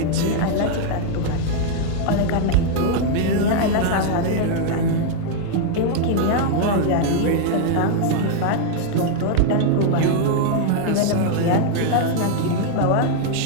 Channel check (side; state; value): both; different; correlation 0.00